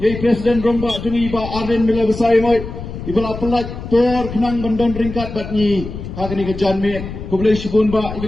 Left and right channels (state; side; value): noise; left; rumble, 9 dB below the sound